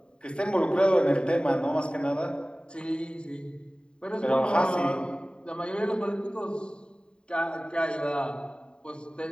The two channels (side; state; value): right; late; 0.051 ms